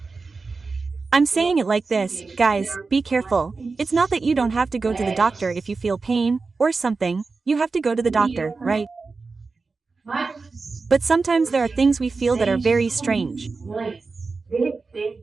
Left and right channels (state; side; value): quieter; left; 4.2 dB